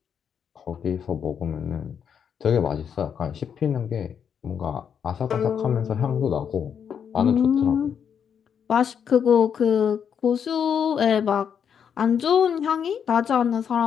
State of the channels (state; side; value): quieter; right; 7.7 dB